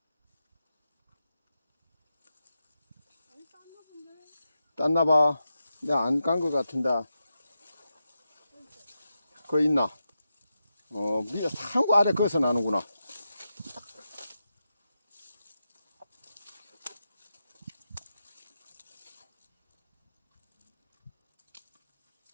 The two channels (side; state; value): both; inverted; correlation -0.88